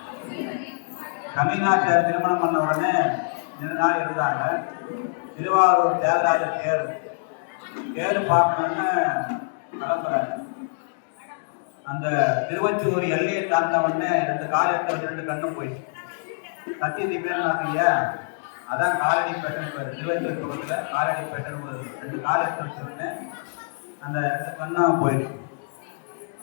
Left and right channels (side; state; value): right; silent; digital silence